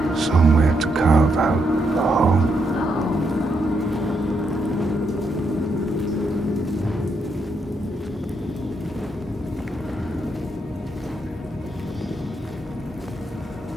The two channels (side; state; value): both; normal; correlation 0.79